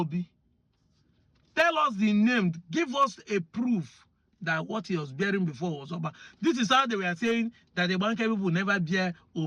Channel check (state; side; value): identical; both; correlation 1.00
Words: Tell us the name, give us a proof that what he was bearing before was Oba. This is how they were saying that the Banker people never bear